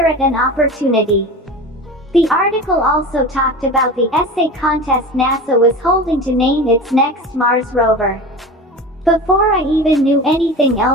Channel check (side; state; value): both; normal; correlation 0.32